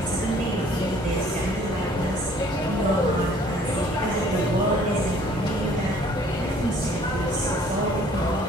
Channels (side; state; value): both; normal; correlation 0.57